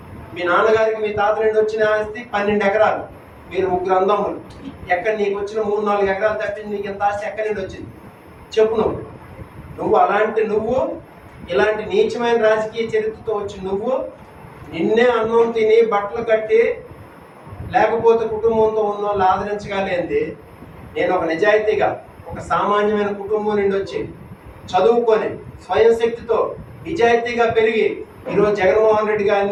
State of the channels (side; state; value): both; identical; correlation 1.00